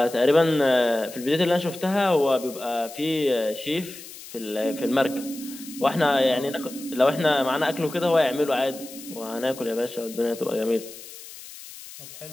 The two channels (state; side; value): noise; left; hiss, 15 dB below the sound